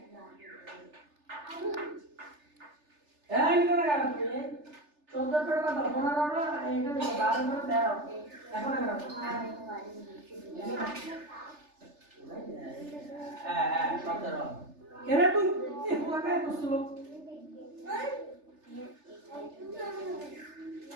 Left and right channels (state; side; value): late; left; 3.3 ms